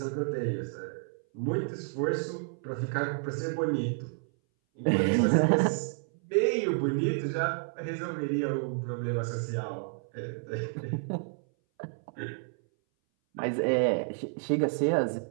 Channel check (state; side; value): silent; left; 58 dB below the other